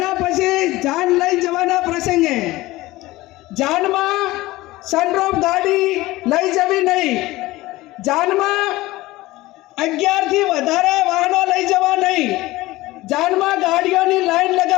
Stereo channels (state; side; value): quieter; right; 18.7 dB